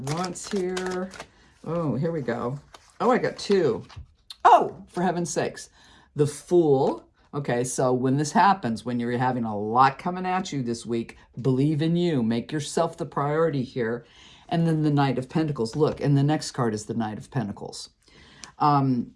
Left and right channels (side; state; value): both; identical; correlation 1.00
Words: here. Oh, here we go. Oh, I got 2. Oh, for heaven's sakes. The Fool. Okay, so when this happens, when you're having a lot coming at you this week, believe in you. Make yourself the priority here. And then the Knight of Pentacles. Look, and the next card is the Knight of Pentacles.